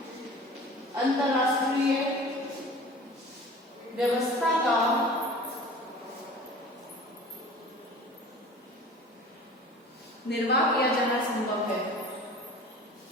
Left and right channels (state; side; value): normal; both; correlation 0.42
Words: अंतरराष्ट्रीय व्यवस्था का निर्वाह किया जाना संभव है।